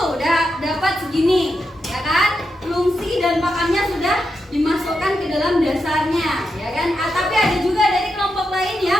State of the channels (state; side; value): normal; both; correlation 0.86